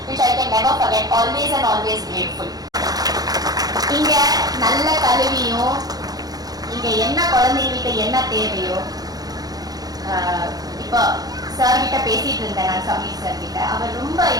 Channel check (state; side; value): late; left; 0.19 ms